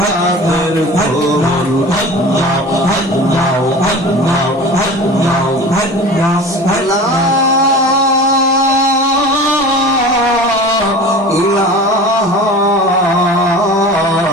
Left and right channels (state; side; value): normal; both; correlation 0.36